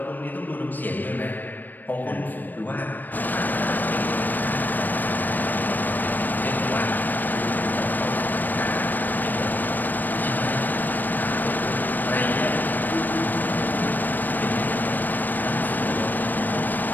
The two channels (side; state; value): right; late; 0.089 ms